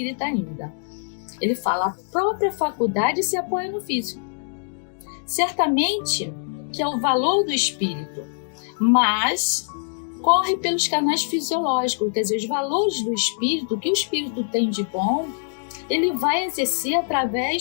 ainda. Ele fala: a própria faculdade se apoia no físico. Certamente que é o valor do espírito, mas corre pelos canais fisiológicos, quer dizer, os valores do espírito, o que o espírito tem de bom, ele vai exercer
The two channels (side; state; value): right; silent; digital silence